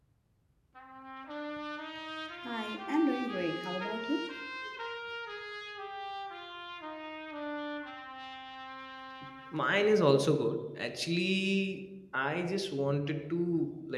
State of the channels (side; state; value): both; identical; correlation 1.00